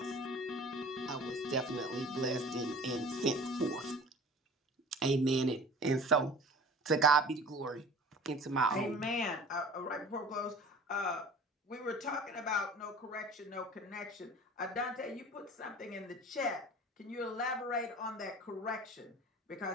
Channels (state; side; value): normal; both; correlation 0.43